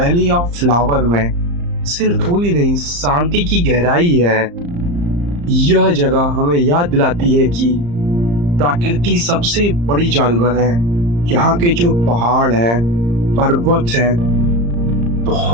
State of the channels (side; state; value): left; late; 35 ms